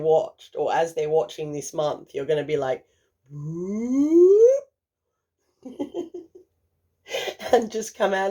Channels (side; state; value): both; identical; correlation 1.00